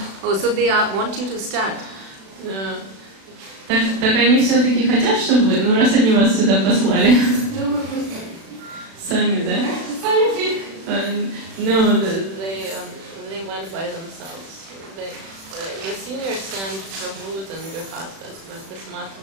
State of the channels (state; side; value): late; left; 36 ms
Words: Oh, so they want you to start? Так они все-таки хотят, чтобы вы, ну раз они вас сюда послали. Думаю, просто. Сами, да? Сами. No, they went by themselves. The seniors sent Prabhus and Grihastas, but this